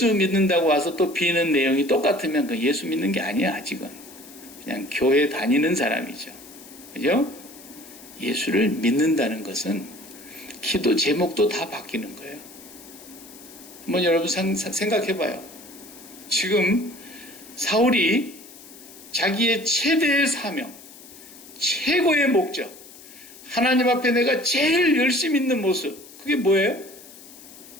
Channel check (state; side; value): noise; left; hiss, 19 dB below the sound